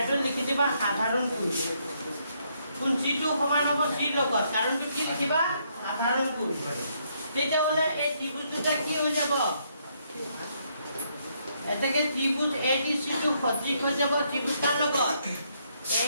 লিখি দিবা সাধাৰণ কোণ কোন চিটো সমান হ'ব চিৰ লগত কাৰণটো কি লিখিবা সাধাৰণ কোণ তেতিয়া মানে এই ত্ৰিভুজ দুটা কি হৈ যাব এটাকে ত্রিভুজ এডিসি টু সদৃশ হৈ যাব ত্রিভুজ কার লগত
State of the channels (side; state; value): both; inverted; correlation -0.73